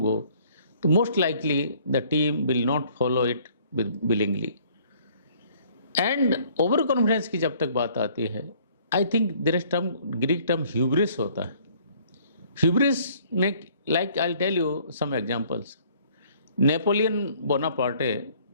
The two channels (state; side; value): inverted; both; correlation -0.59